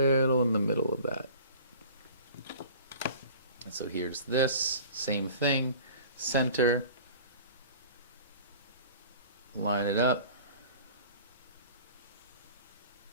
in the middle of that. And so here's this, same thing, center, line it up.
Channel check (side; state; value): both; inverted; correlation -0.44